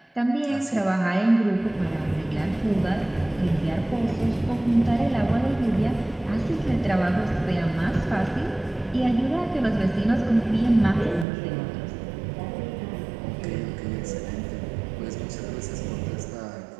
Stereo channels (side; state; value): left; drops out; at 11.2 s